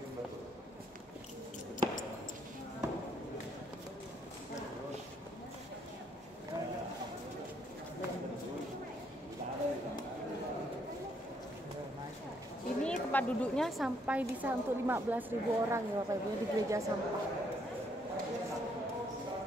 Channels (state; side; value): normal; both; correlation 0.71